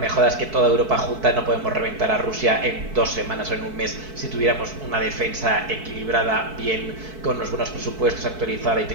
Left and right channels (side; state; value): left; late; 4.6 ms